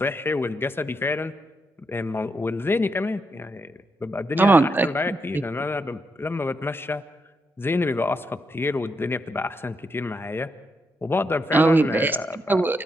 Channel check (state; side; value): normal; both; correlation 0.81